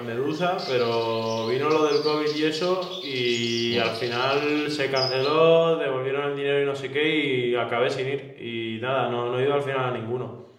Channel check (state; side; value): identical; both; correlation 1.00